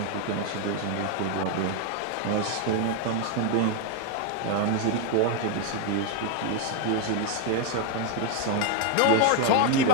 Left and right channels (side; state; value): both; different; correlation 0.00